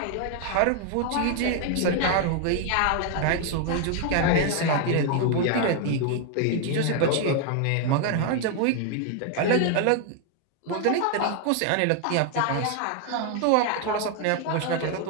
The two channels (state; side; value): different; both; correlation 0.00